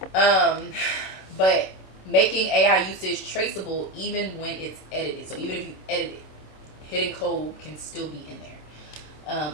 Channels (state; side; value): late; right; 27 ms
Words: But making AI usage traceable even when it's edited. So even if you edit it, hidden code can still be in there.